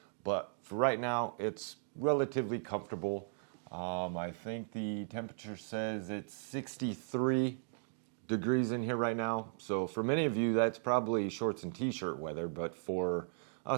But for right now, it's relatively comfortable. I think the temperature says it's 63 degrees in here right now. So for many of you, that's probably shorts and t-shirt weather. But for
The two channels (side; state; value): left; silent; digital silence